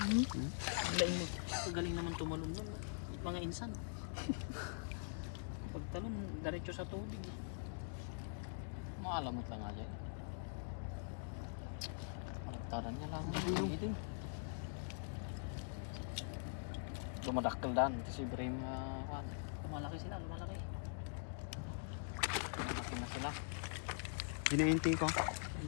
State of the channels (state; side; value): silent; right; digital silence